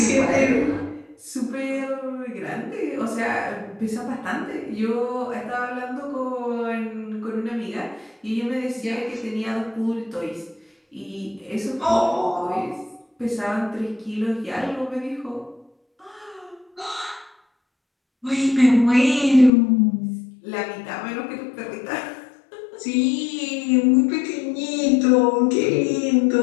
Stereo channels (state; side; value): drops out; right; at 19.5 s